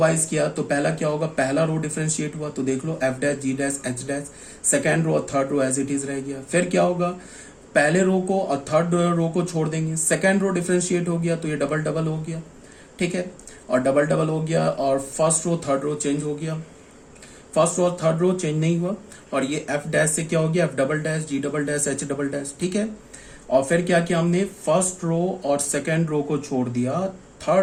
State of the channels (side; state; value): both; identical; correlation 1.00